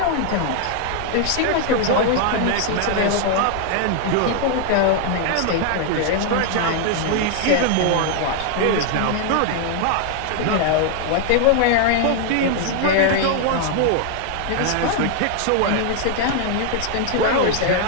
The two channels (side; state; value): both; different; correlation 0.00